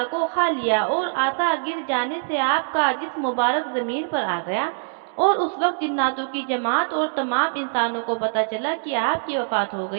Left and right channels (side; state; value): left; silent; digital silence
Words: को खा लिया और आसा गिर जाने से आपका जिस्म मुबारक जमीन पर आ गया और उस वक्त जिन्नातों की जमात और तमाम इंसानों को पता चला कि आपकी वफात हो